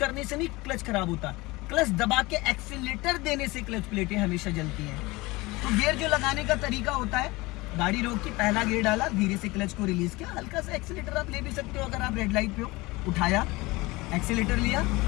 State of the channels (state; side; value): quieter; right; 22.2 dB